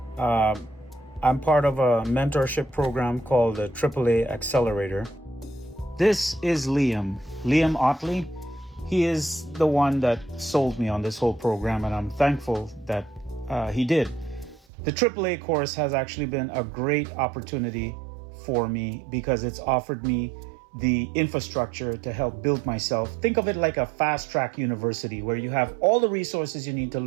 I'm part of a mentorship program called the AAA Accelerator. This is Liam Otley. He is the one that sold me on this whole program, and I'm thankful that he did. The AAA course has actually been a great opportunity for me because it's offered me the infrastructure to help build myself. Think of it like a fast track university where you have all the resources you need to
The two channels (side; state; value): left; drops out; at 14.6 s